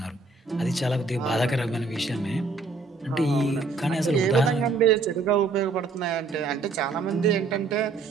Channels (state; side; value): quieter; left; 3.9 dB